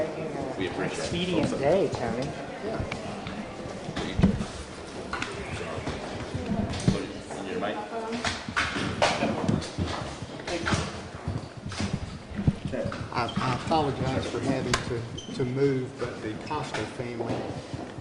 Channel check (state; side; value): identical; both; correlation 1.00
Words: We an appreciate it. expedient day, Tony. Put your mic. I apologize for having to move, but the Costa family